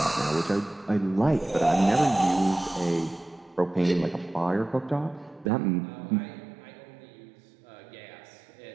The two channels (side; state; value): left; drops out; at 5.5 s